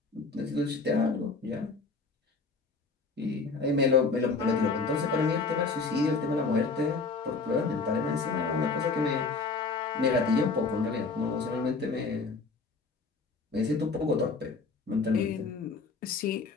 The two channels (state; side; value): quieter; right; 4.3 dB